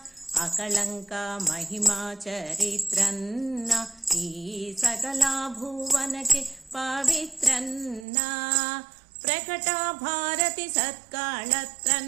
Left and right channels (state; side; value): drops out; left; at 8.1 s